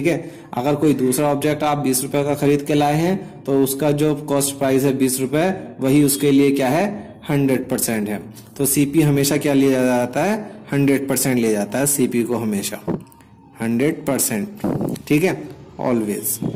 है। अगर कोई दूसरा ऑब्जेक्ट आप 20 रुपए का खरीद के लाए हैं तो उसका जो कॉस्ट प्राइस है 20 रुपए, वही उसके लिए क्या है 100% है। तो सीपी हमेशा क्या लिया जाता है 100% लिया जाता है सीपी को हमेशा 100%। ठीक है, ऑलवेज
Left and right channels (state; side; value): identical; both; correlation 1.00